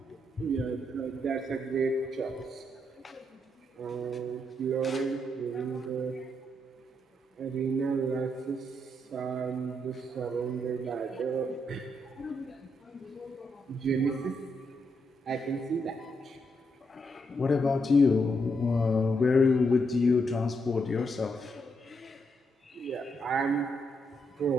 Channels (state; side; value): normal; both; correlation 0.79